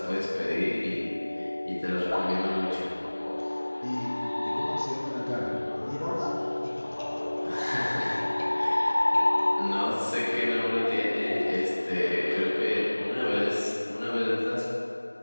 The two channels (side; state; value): both; inverted; correlation -1.00